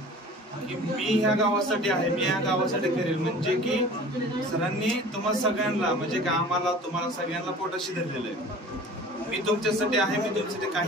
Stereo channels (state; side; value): normal; both; correlation 0.43